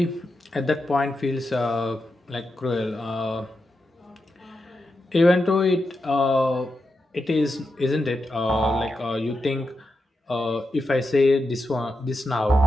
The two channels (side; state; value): both; normal; correlation 0.87